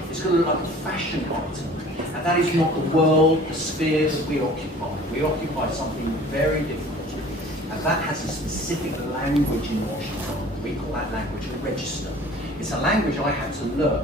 It's going to look like a fashion item. And that is not the world, the sphere that we occupy. We occupy something very different. And that has a specific language in watch design. We call that language a register. It's a language I had to learn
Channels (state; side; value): normal; both; correlation 0.47